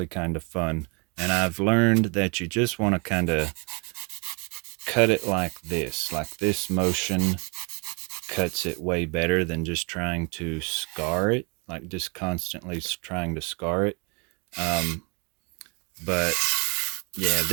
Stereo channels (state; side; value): quieter; left; 33.1 dB